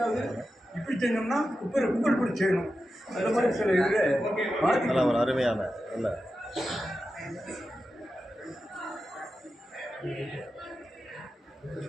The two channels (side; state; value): both; normal; correlation 0.91